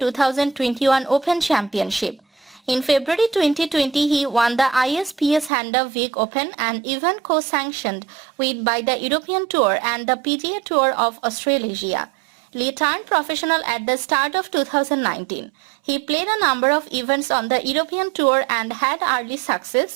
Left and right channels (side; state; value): left; drops out; at 5.5 s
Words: Open Championship. In February 2020, he won the ISPS Handa Week Open, an event co-sanctioned by the European Tour and the PGA Tour of Australasia. Lee turned professional at the start of 2019. He played a number of events on the European Tour and had early